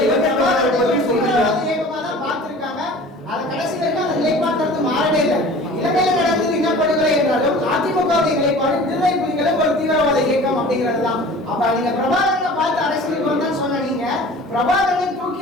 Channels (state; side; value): normal; both; correlation 0.43